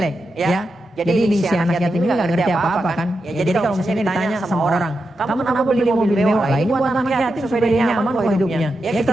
Ya. Jadi si anak yatim ini nggak ngerti apa-apa kan. Ya, jadi kalau misalnya ditanya sama orang, kamu kenapa beli mobil mewah? Lah ini buat anak yatim supaya dia nyaman kok hidupnya. Ya kita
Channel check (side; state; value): both; normal; correlation 0.87